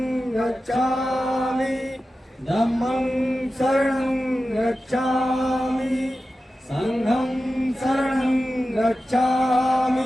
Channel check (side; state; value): both; normal; correlation 0.93